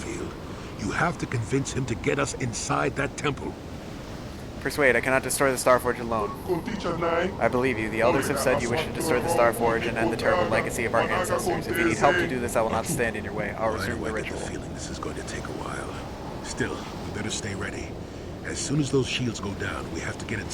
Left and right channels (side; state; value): both; identical; correlation 1.00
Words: You have to convince him to get us inside that temple. Persuade, I cannot destroy the Star Forge alone. I believe you. The elders have said you wish to destroy the Star Forge and end the terrible legacy of our ancestors. If you need help to do this, I will not stand in your way. I'll resume the ritual. I get the feeling this is going to take a while. Still, we better stay ready. As soon as those shields go down, we have to get